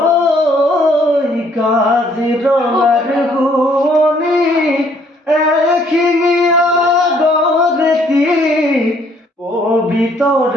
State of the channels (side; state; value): both; normal; correlation 0.64